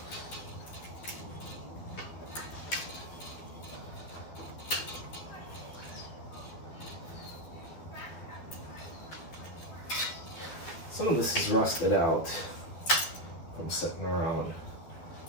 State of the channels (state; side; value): late; right; 12 ms